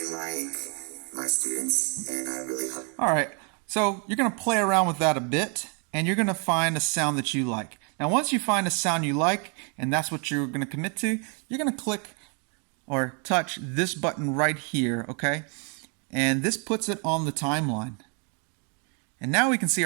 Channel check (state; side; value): quieter; left; 38.1 dB